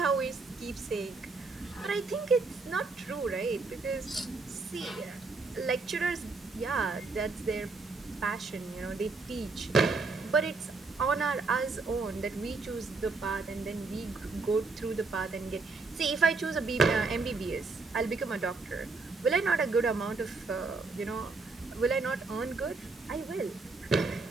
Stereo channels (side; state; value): left; quieter; 3.9 dB